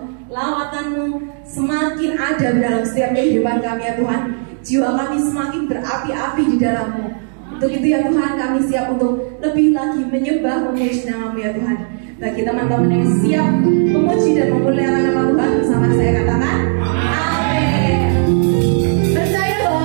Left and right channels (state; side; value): silent; left; 59 dB below the other